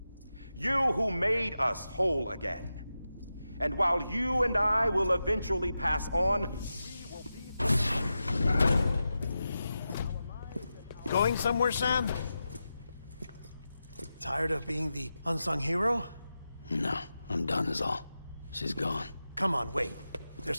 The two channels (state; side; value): inverted; both; correlation -0.91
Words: You who made us whole again. And while you and I will eventually pass on, we will be... Going somewhere, Sam? Tired of being the unsung hero? No, I'm done is all. She's gone. Come on, wait. There's